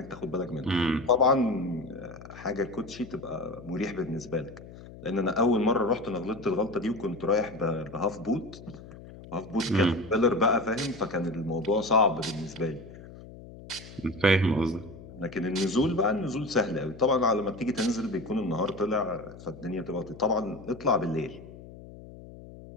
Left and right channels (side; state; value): left; noise; hum, 16 dB below the sound